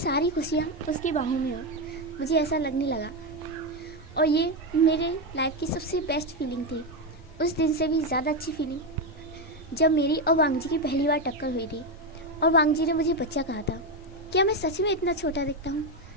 खुशियाँ उसकी बाहों में हो, मुझे ऐसा लगने लगा। और ये मेरे लाइफ की सबसे बेस्ट फीलिंग थी। उस दिन से भी ज़्यादा अच्छी फीलिंग जब मेरी और वांगजी की पहली बार टक्कर हुई थी और वांगजी ने मुझे बच्चा कहा था। क्या मैं सच में इतना छोटा दिखता हूँ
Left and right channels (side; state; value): both; normal; correlation 0.09